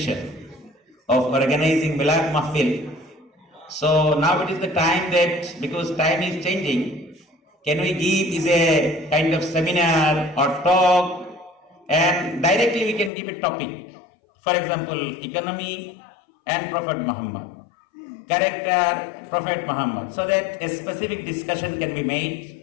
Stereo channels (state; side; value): drops out; right; at 13.1 s